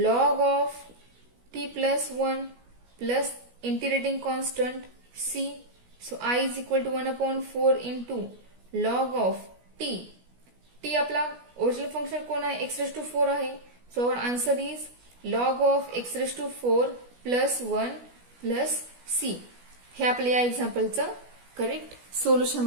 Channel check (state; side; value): late; left; 16 ms